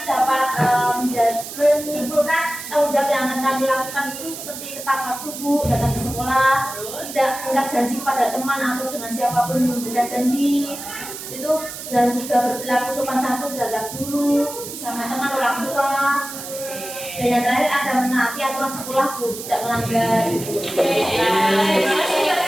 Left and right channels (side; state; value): right; noise; hiss, 10 dB below the sound